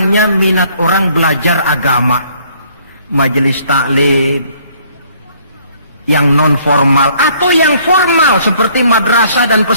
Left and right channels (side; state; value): both; inverted; correlation -0.62